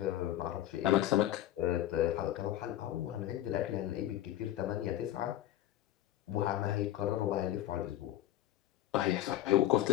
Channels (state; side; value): quieter; right; 13.3 dB